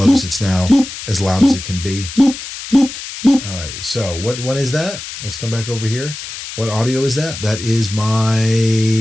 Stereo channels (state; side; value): noise; left; hiss, 10 dB below the sound